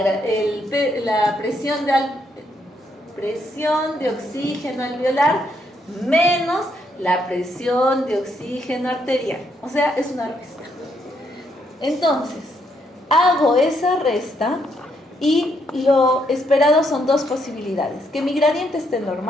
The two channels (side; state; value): both; normal; correlation 0.75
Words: presión de oxígeno alveolar menos la presión de oxígeno arterial. O sea, es una resta. Entonces, hago esa resta y lo esperado son dos posibilidades: que mi gradiente esté